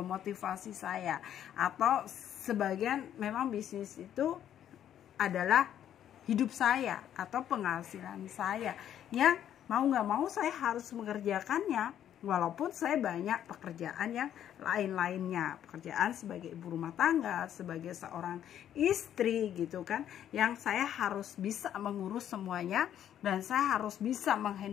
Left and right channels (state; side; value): quieter; right; 10.4 dB